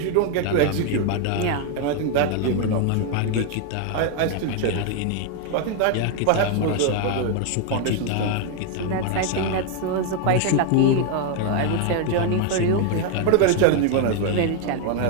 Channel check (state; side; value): different; both; correlation 0.01